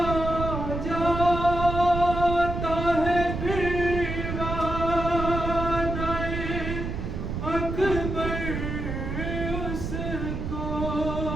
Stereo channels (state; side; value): noise; right; rumble, 4 dB below the sound